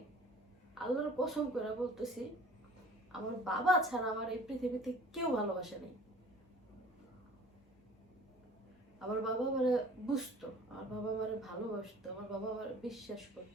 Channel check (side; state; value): both; normal; correlation 0.48